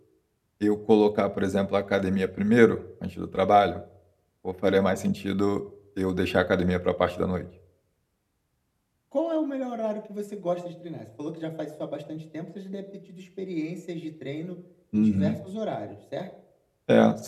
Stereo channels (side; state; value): both; identical; correlation 1.00